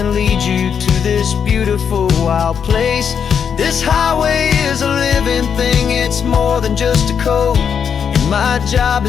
lead you to this beautiful wild place. This highway is a living thing, it's more than just a code. And my job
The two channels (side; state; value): right; quieter; 7.3 dB